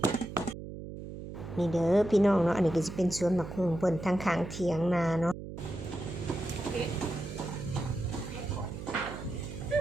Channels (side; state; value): right; noise; hum, 10 dB below the sound